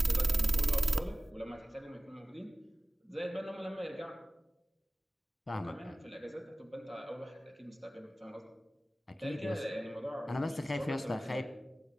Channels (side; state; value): both; normal; correlation 0.97